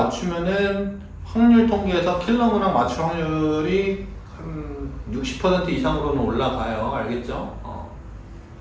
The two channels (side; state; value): both; identical; correlation 1.00